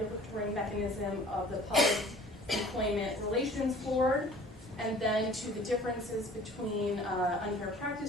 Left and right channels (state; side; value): normal; both; correlation 0.49